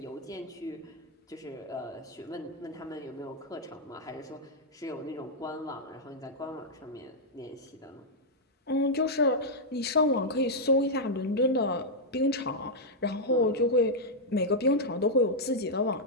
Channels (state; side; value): normal; both; correlation -0.05